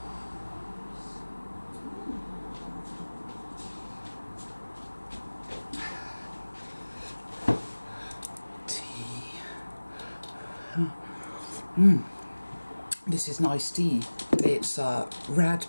Tea. This is nice tea. It's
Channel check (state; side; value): inverted; both; correlation -1.00